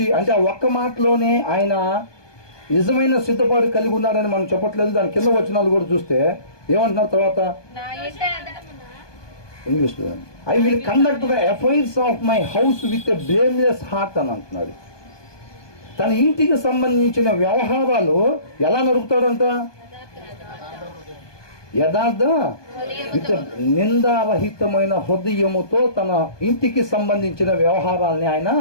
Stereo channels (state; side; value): late; right; 1.2 ms